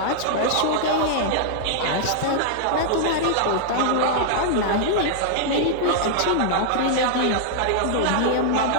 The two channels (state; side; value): different; both; correlation -0.01